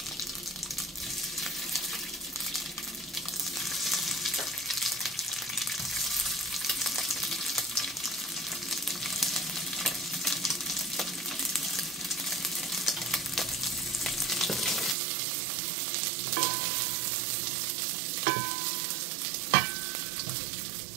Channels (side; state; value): left; drops out; at 15.0 s